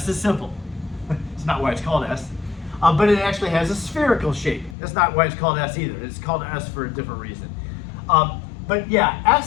is simple. It's not why it's called S. But it actually has a spherical shape. That's not why it's called S either. It's called S for a different reason. But yeah,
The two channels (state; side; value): drops out; right; at 4.8 s